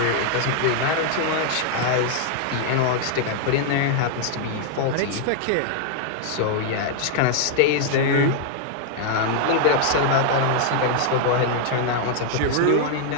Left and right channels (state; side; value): different; both; correlation 0.00